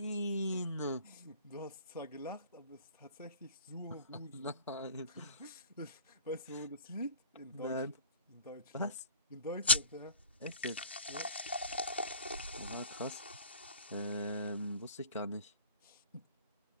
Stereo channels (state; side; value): inverted; both; correlation -0.43